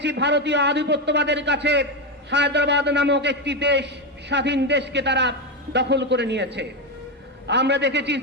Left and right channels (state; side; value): normal; both; correlation 0.10